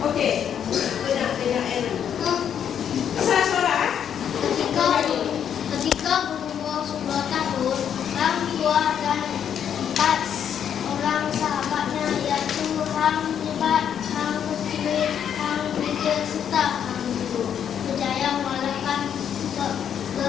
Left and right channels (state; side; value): quieter; right; 8.7 dB